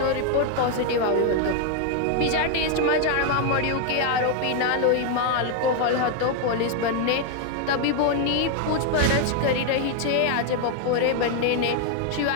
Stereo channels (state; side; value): different; both; correlation 0.00